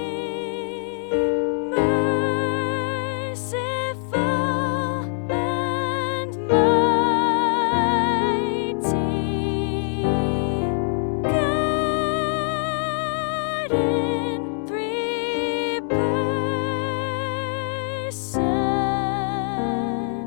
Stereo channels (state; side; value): silent; right; 63 dB below the other